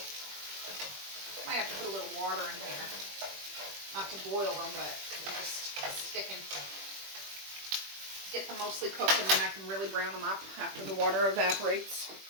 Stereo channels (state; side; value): late; left; 21 ms